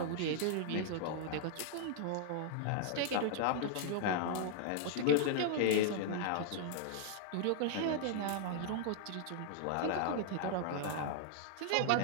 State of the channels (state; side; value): different; both; correlation -0.01